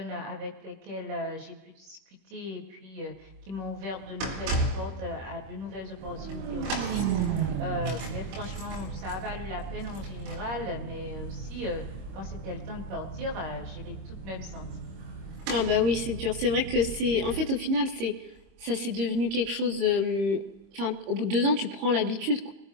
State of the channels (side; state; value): left; late; 26 ms